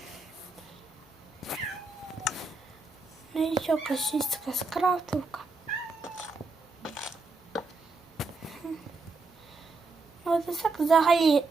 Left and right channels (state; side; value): quieter; left; 3.7 dB